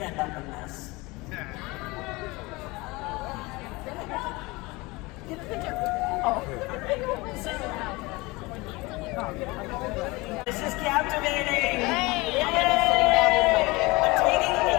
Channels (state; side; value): quieter; right; 23.3 dB